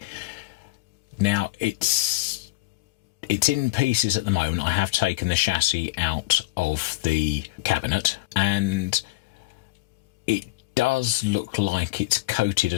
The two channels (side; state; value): right; quieter; 19.4 dB